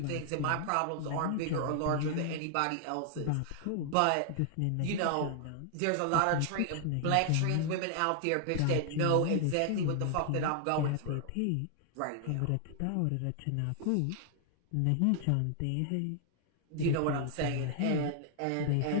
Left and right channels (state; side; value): different; both; correlation 0.00